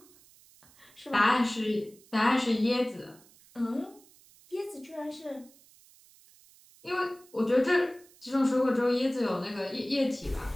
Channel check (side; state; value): right; noise; hiss, 27 dB below the sound